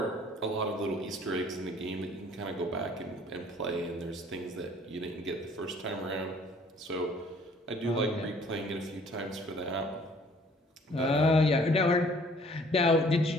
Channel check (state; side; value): normal; both; correlation 0.57